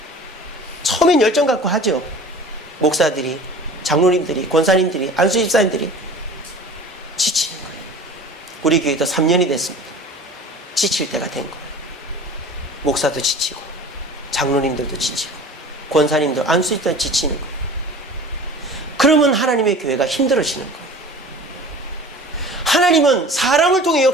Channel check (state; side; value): normal; both; correlation 0.41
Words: 처음엔 열정 갖고 하죠. 목사들이, 장로님들이, 권사님들이, 안수집사님들이 지치는 거예요. 우리 교회도 3년이 됐습니다. 지칠 때가 된 거예요. 목사도 지치고 장로님들도 지치고 권사님들, 안수집사도 지치는 거예요. 그러면 하나님의 교회가 힘들어지는 거예요. 하나님은 사람을 통해